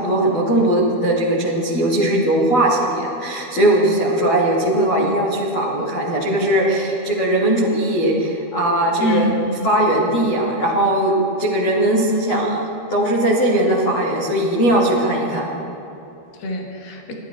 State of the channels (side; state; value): right; late; 13 ms